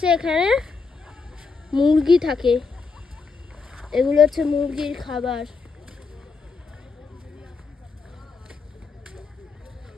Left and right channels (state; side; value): quieter; right; 4.6 dB